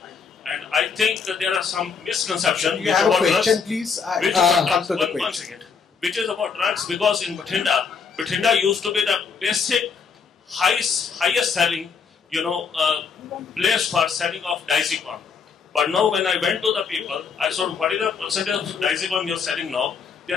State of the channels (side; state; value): right; quieter; 5.8 dB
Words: And I think that there are some misconceptions. You have a question, please? One second. Which is about drugs, because in Bathinda used to be the basic, highest selling, place for selling of diazepam. But now when I went to the people, I saw what is the percentage of diazepam you are selling now. They